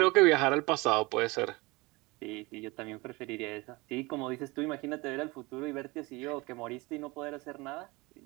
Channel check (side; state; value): left; quieter; 24.0 dB